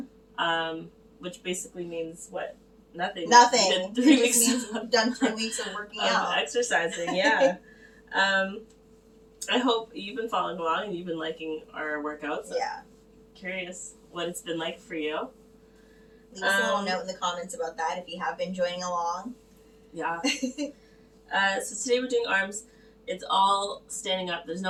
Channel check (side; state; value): both; identical; correlation 1.00